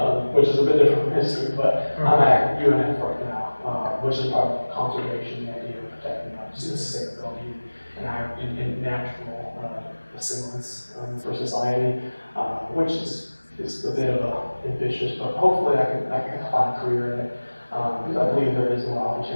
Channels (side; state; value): both; inverted; correlation -1.00